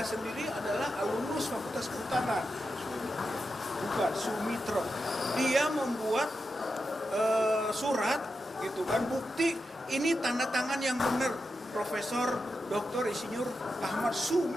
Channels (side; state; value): both; normal; correlation 0.89